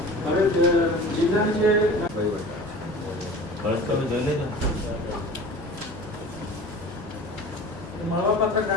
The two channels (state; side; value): normal; both; correlation 0.39